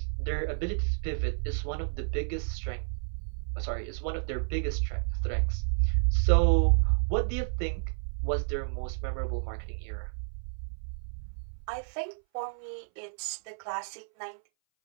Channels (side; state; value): left; silent; 57 dB below the other